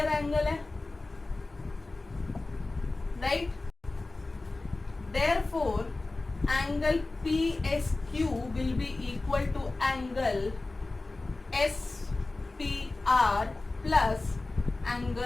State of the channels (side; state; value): right; quieter; 3.2 dB